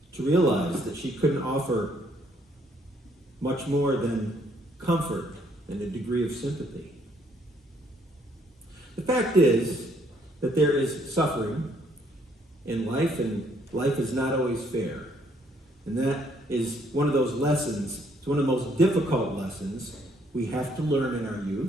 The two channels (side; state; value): both; normal; correlation 0.68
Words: to realize that she couldn't offer much more than comfort and a degree of sympathy. The fact is that there is suffering in life, and life is not always fair. And that is one of those lessons, it's one of the most difficult lessons we have to learn in our